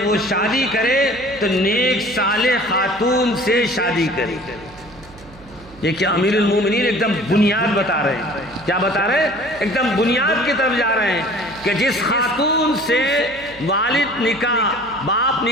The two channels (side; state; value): right; noise; hum, 22 dB below the sound